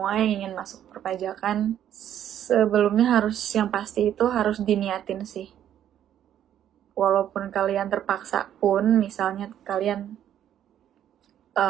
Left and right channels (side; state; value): left; quieter; 10.6 dB